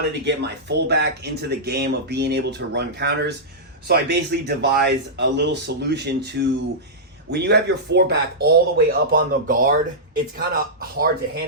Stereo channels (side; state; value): both; normal; correlation -0.13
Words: to get my fullback into the game of being able to run counters. So I basically devised a little solution to, when you have your fullback all the way up on the guard, it's kind of hard to